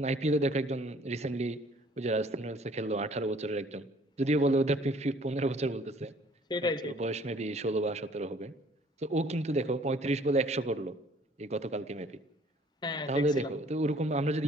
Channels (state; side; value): normal; both; correlation 0.57